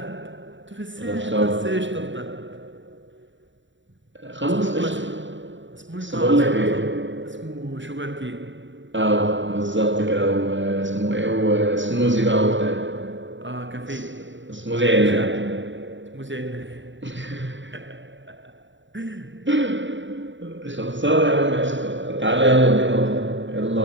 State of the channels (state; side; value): late; left; 0.54 ms